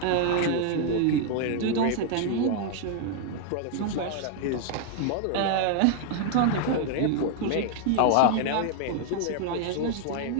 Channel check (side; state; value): both; different; correlation 0.00